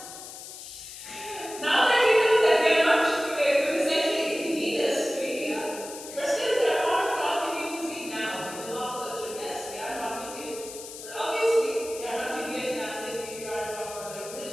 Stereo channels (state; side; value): noise; left; hiss, 12 dB below the sound